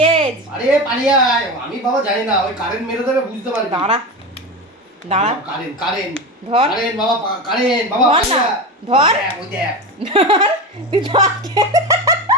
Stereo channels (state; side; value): normal; both; correlation 0.22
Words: আরে পালিয়ে আয়, আমি বাবা জানি না, ওই কারেন্ট মেরে দেবে বুঝতে পারবি। দাঁড়া কারেন্ট ধর, কারেন্ট বাবা, কারেন্ট বাবা, ধর না, ধর ওই দেখ